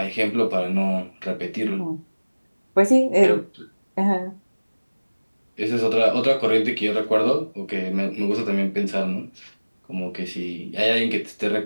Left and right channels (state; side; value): inverted; both; correlation -1.00